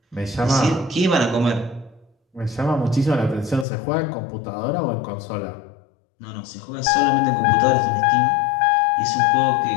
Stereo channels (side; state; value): right; drops out; at 3.7 s